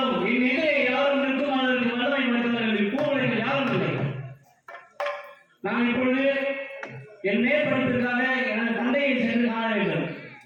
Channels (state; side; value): identical; both; correlation 1.00